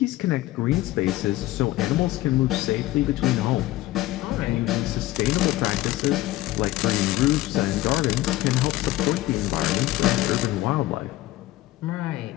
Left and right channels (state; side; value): quieter; right; 16.7 dB